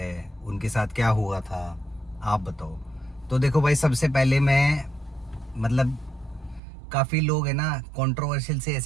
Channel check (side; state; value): left; drops out; at 6.6 s